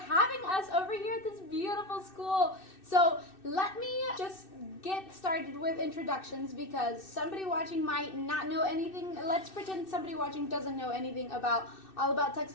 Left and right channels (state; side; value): late; right; 2.6 ms